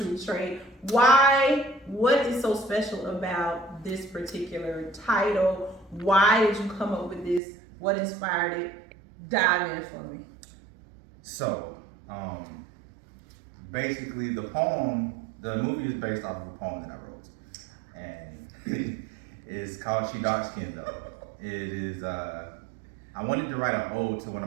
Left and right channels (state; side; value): drops out; left; at 7.4 s